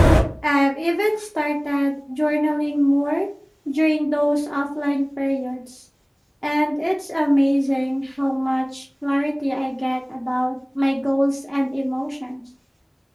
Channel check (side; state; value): both; identical; correlation 1.00